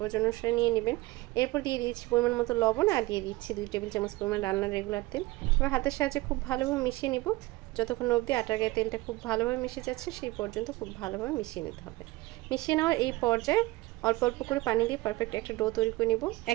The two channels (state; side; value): quieter; left; 20.3 dB